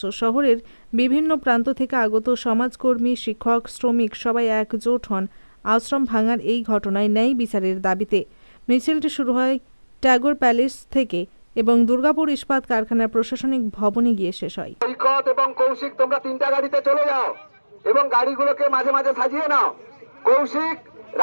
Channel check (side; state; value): both; inverted; correlation -1.00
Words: শহরের বিভিন্ন প্রান্ত থেকে আগত সমাজকর্মী, শিক্ষক, শ্রমিক সবাই একজোট হন আশ্রম ভাঙার এই ঘটনায় ন্যায় বিচারের দাবিতে। মিছিলটি শুরু হয় ট্যাগর প্যালেস থেকে এবং দুর্গাপুর ইস্পাত কারখানার প্রশাসনিক ভবনে গিয়ে শেষ হয়। সৈকত এবং কৌশিক, তোমরা 3টা গাড়িতে চলে যাও এবং গাড়িগুলোকে মাঝে মাঝে সাজিয়ে নাও। কৌশিক,